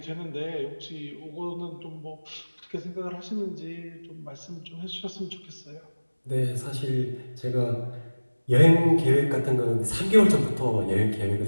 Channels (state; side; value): inverted; both; correlation -1.00